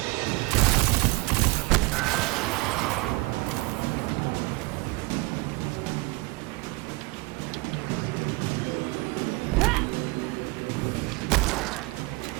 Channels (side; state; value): left; quieter; 24.1 dB